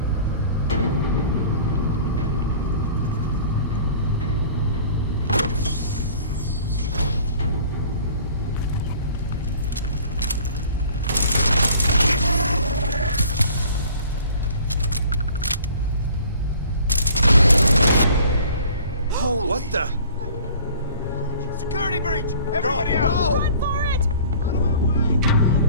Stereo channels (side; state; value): both; inverted; correlation -0.49